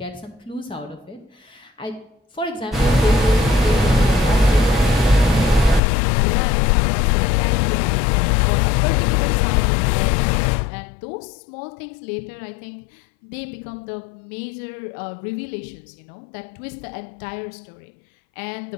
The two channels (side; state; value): right; drops out; at 5.8 s